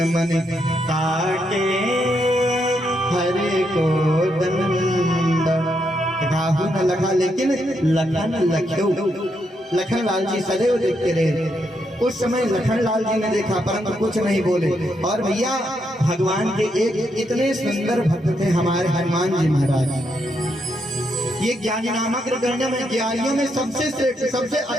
मन काटे हरे को दंड। काहू न लखा, लेकिन लखन लख्यो, लखन लाल जी सदैव देखते रहे। उस समय लखन लाल जी ने देखा परंतु कुछ नहीं बोले। और भैया भगवान के एक इतने सुंदर भक्त थे हमारे हनुमान जी महाराज। ये ज्ञानी नामक अग्रगण्य में, ज्ञानियों में सबसे श्रेष्ठ, सबसे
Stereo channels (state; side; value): normal; both; correlation 0.79